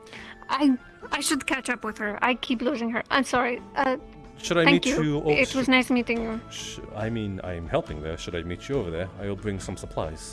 I should catch up with her. I keep losing her. I'm sorry. Should I thank meet you? It was nice meeting you. I mean, I'm helping there. Should I meet you over there? I will bring some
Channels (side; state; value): both; identical; correlation 1.00